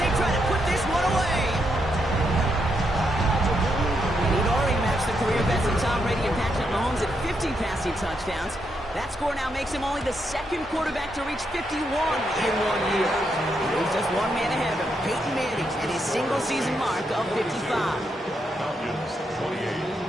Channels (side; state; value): both; normal; correlation 0.80